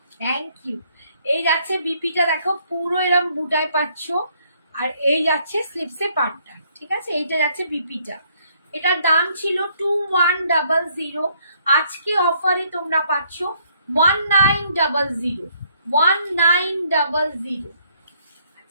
Thank you. এই যাচ্ছে বিপিটা, দেখো পুরো এরকম বুটায় পাচ্ছ, আর এই যাচ্ছে স্লিপসে পাটটা, ঠিক আছে, এইটা যাচ্ছে বিপিটা। এটার দাম ছিল 2100, আজকে অফারে তোমরা পাচ্ছ 1900, 1900।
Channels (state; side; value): inverted; both; correlation -0.67